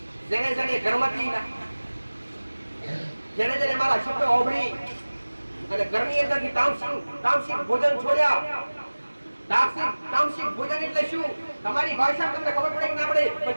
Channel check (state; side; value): inverted; both; correlation -1.00